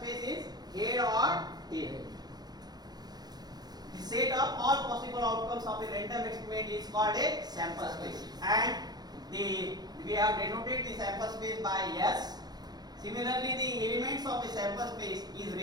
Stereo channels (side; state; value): left; late; 0.19 ms